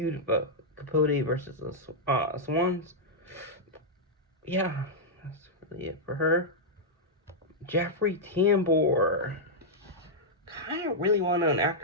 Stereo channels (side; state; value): both; normal; correlation -0.07